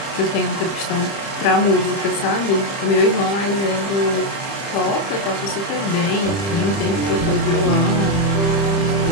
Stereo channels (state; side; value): late; right; 30 ms